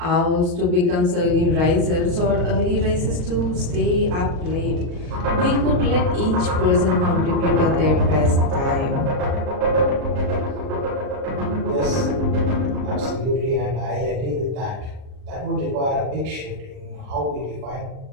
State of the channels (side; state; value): left; late; 39 ms